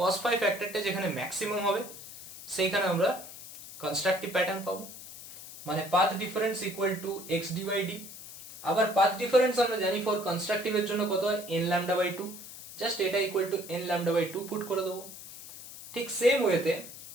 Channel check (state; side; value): noise; left; hiss, 14 dB below the sound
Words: phi ফ্যাক্টরটা যেখানে ম্যাক্সিমাম হবে সেইখানে আমরা কনস্ট্রাকটিভ প্যাটার্ন পাবো, মানে path difference equal to xd by d। আবার পাথ ডিফারেন্স আমরা জানি ফর কনস্ট্রাকটিভ এর জন্য কত হয়, n lambda বাই 2, জাস্ট এটা equal to n lambda by 2 put করে দেবো। ঠিক সেম ওয়েতে